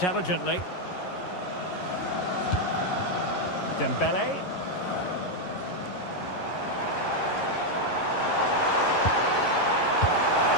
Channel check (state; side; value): late; right; 11 ms